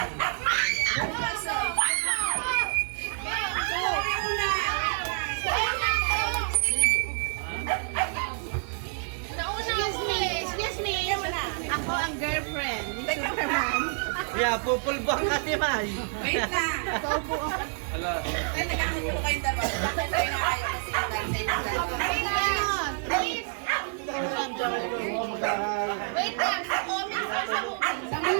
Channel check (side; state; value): left; silent; 59 dB below the other